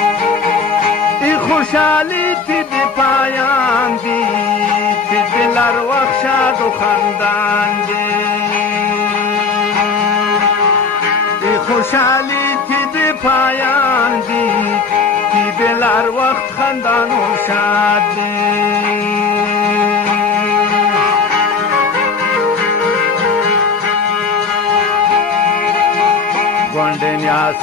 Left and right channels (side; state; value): right; quieter; 4.9 dB